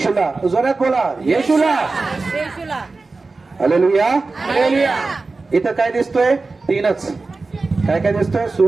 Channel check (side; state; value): left; quieter; 3.8 dB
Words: जोरात बोला, येशूला. हालेलुया. इथं काय दिसतोय? तीनच. काय काय दिसतोय?